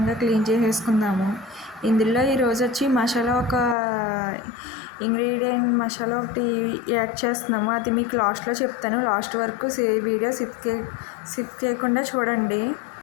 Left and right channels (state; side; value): drops out; right; at 3.8 s